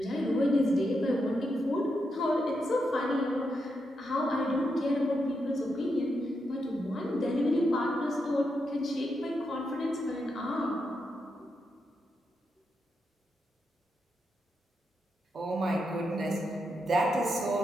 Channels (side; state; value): both; normal; correlation 0.83